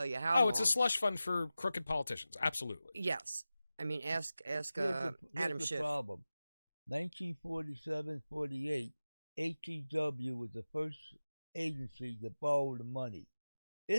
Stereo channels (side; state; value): both; inverted; correlation -0.95